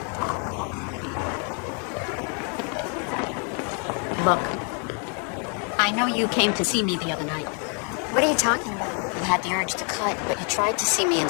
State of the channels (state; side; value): quieter; right; 39.7 dB